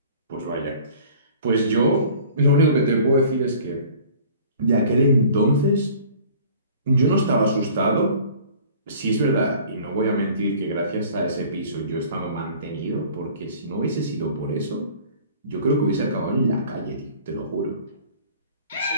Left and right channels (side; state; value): both; inverted; correlation -0.49